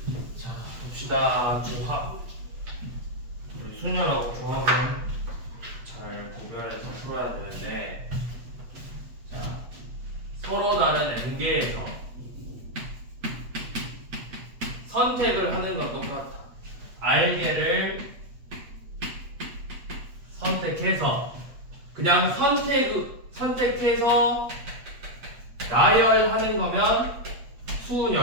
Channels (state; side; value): late; left; 8.4 ms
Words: 자, 봅시다. 조합. 우리 순열하고 조합은 잘 구별해서 풀어야 되는데, 자, 서로 다른 n개에서 선택을 하는 건 똑같아. r개를 선택해서 그냥 선택해서 나열하는 거면